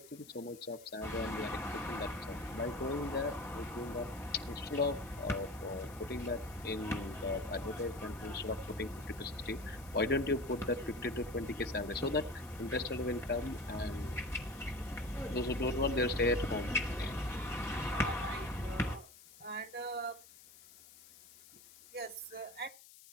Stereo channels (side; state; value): left; noise; hiss, 20 dB below the sound